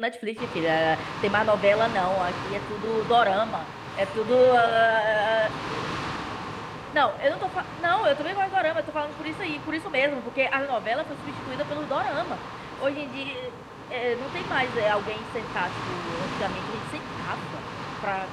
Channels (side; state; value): both; identical; correlation 1.00